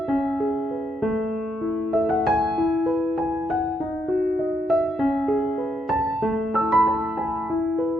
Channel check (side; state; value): both; normal; correlation 0.78